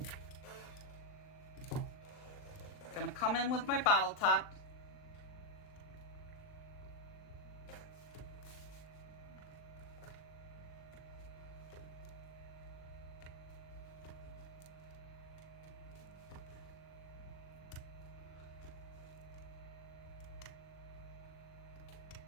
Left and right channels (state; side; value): late; right; 39 ms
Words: I'm going to come in with my bottle top.